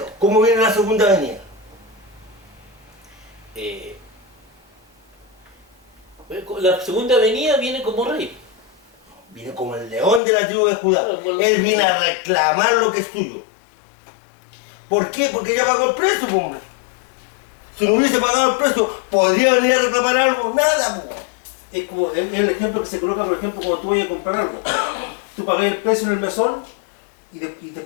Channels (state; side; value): drops out; right; at 10.2 s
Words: ¿cómo viene la segunda venida? La segunda venida viene como rey. Viene como el león de la tribu de Judá. Él viene a reclamar lo que es suyo. ¿Por qué? Porque ya pagó el precio, pues, hombre. Si no hubiese pagado el precio, ¿podría venir a reclamar algo? Nada, pues. Es como es el ejemplo que se coloca, por ejemplo, cuando tú vayas a comprar algo. Tú pagás el precio en el mesón y